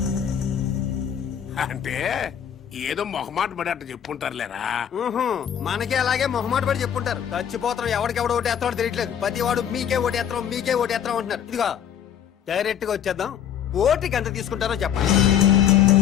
అంటే ఏదో మొహమాట పడి అట్ట చెప్పుంటారులేరా. మనకే అలాగే మొహమాట పడి చెప్పుంటారు. చచ్చిపోతాం, ఎవడికెవడు ఓటేస్తాడో తెలియట్లేదు. ప్రతి వాడు మీకే ఓటేస్తాం మీకే ఓటేస్తాం అంటున్నారు. ఇదిగో డైరెక్ట్ గా వచ్చేద్దాం. ఓటుకి ఎంత తీసుకుంటారో చెప్పండి.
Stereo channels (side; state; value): right; quieter; 9.1 dB